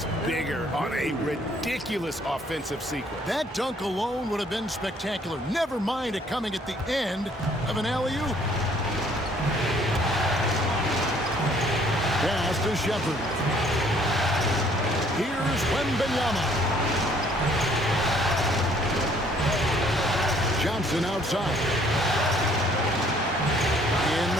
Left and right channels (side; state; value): both; normal; correlation 0.61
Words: bigger on a ridiculous offensive sequence. That dunk alone would have been spectacular. Never mind it coming at the end of an alley-oop. Pass to Shepard. Here's Wembanyama. Johnson outside. In